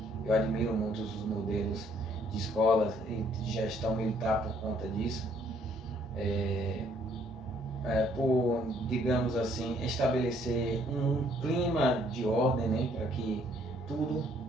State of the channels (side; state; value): both; normal; correlation 0.65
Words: Eu admiro muito os modelos de escolas e de gestão militar por conta disso, por, digamos assim, estabelecer um clima de ordem, né, para que tudo